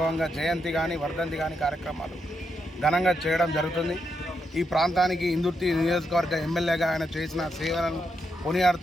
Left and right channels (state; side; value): normal; both; correlation 0.82